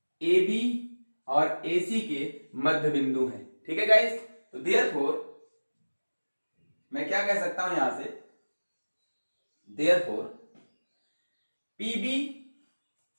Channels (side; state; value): both; inverted; correlation -1.00